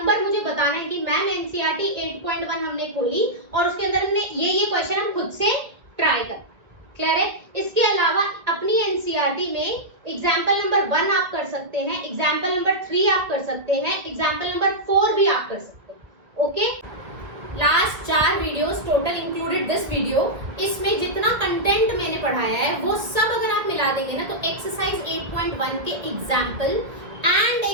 मुझे बताना है कि मैम एनसीईआरटी 8.1 हमने खोली और उसके अंदर हमने ये क्वेश्चन हम खुद से ट्राई कर। क्लियर है? इसके अलावा अपनी एनसीईआरटी में एग्जाम्पल नंबर 1 आप कर सकते हैं, एग्जाम्पल नंबर 3 आप कर सकते हैं, एग्जाम्पल नंबर 4 भी आप कर सकते हैं। Okay, last 4 videos total included this video, इसमें जितना कंटेंट मैंने पढ़ाया है वो सब अगर आप मिला देंगे ना तो एक्सरसाइज 8.1 के एग्जाम्पल एंड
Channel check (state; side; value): late; left; 1.5 ms